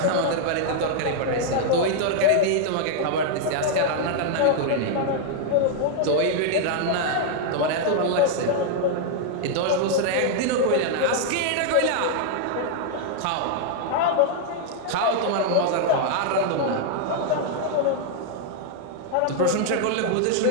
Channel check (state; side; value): different; both; correlation -0.01